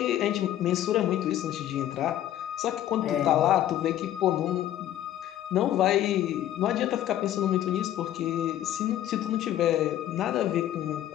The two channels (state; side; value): quieter; right; 12.3 dB